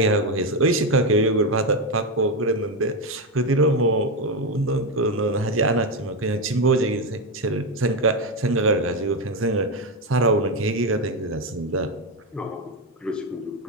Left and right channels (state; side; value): normal; both; correlation 0.09